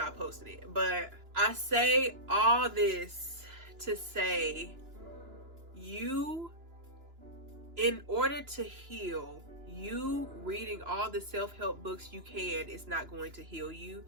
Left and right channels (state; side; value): late; left; 2.9 ms